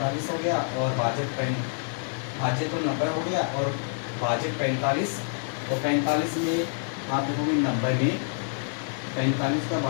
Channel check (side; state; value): right; silent; digital silence